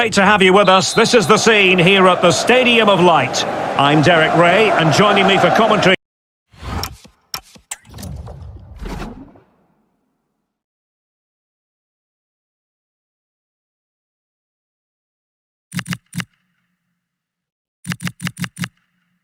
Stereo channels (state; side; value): identical; both; correlation 1.00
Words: to have you with us. This is the scene here at the Stadium of Light. I'm Derek Ray, and joining me for commentary